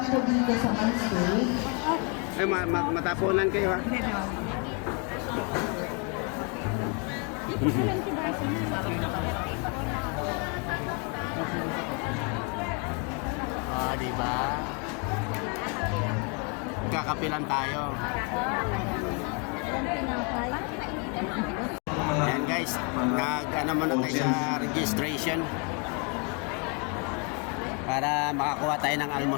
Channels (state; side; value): quieter; right; 35.1 dB